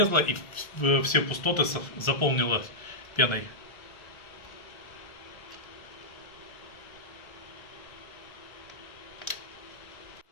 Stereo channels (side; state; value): right; late; 1.3 ms